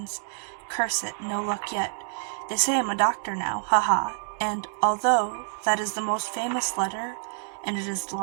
Curse it, no luck yet. They say I'm a doctor now, haha. And although that is the most famous letter, and it is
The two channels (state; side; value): silent; left; digital silence